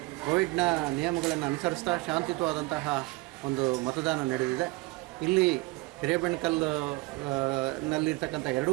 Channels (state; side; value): quieter; left; 22.8 dB